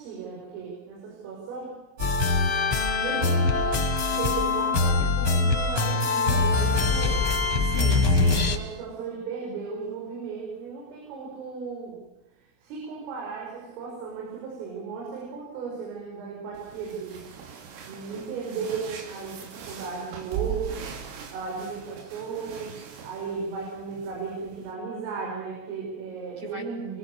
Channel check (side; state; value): left; late; 17 ms